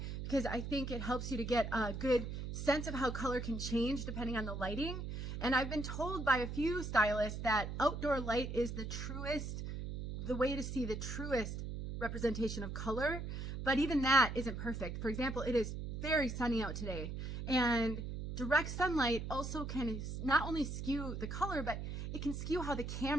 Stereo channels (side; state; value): right; noise; hum, 5 dB below the sound